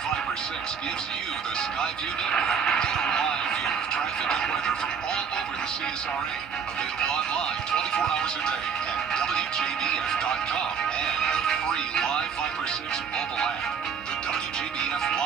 Viper 6 gives you the Skyview Network. Get a live view of traffic and weather from all over the CSRA. Available online 24 hours a day at WJBF.com and the free Live Viper 6 mobile app. The WJBF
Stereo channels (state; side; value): quieter; left; 6.6 dB